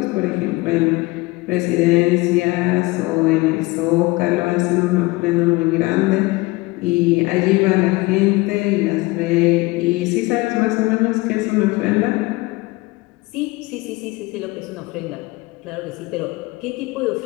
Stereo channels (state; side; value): quieter; right; 22.4 dB